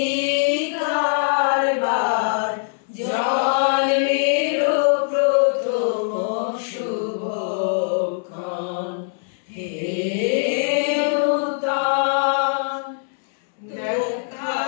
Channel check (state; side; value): silent; right; 64 dB below the other